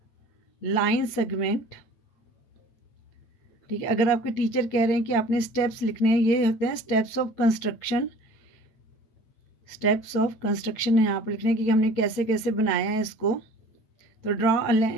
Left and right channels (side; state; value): right; late; 9.1 ms